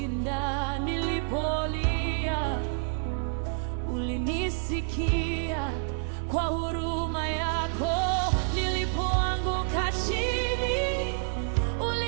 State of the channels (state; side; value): silent; left; 59 dB below the other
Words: Nilipolia ulinisikia, kwa huruma yako. Nilipoanguka chini